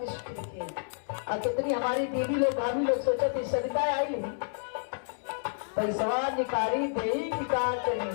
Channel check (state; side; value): silent; right; 58 dB below the other